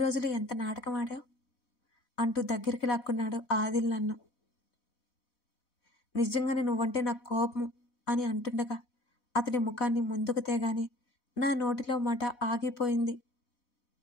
ఎంత నాటకం ఆడావు అంటూ దగ్గరికి లాక్కున్నాడు ఆదిల్ నన్ను. నిజంగానే నువ్వంటే నాకు కోపం అని అంటుండగా అతని ముఖాన్ని ముందుకు తేగానే నా నోటిలో మాట ఆగిపోయింది.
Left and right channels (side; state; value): right; late; 4.1 ms